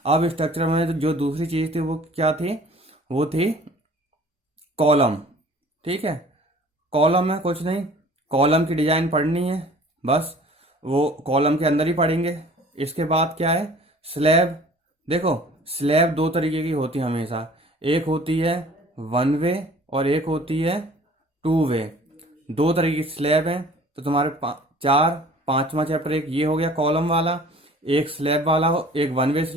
अब स्ट्रक्चर में जो दूसरी चीज थी वो क्या थी, वो थी कॉलम, ठीक है। कॉलम में कुछ नहीं, कॉलम की डिजाइन पढ़नी है बस, वो कॉलम के अंदर ही पढ़ेंगे। इसके बाद क्या है, स्लैब। देखो स्लैब दो तरीके की होती है हमेशा, एक होती है वन वे और एक होती है टू वे। दो तरीके की स्लैब है। तो तुम्हारे पांचवा चैप्टर एक ये हो गया कॉलम वाला, एक स्लैब वाला हो, एक वन वे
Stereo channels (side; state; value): both; normal; correlation 0.49